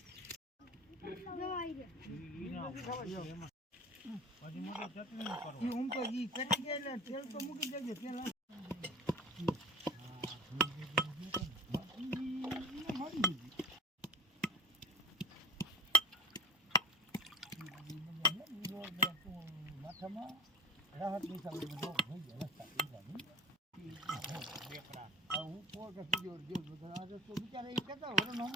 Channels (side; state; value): both; normal; correlation 0.35